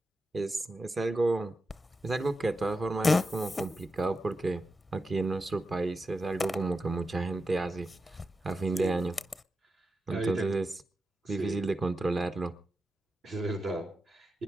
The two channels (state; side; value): normal; both; correlation 0.89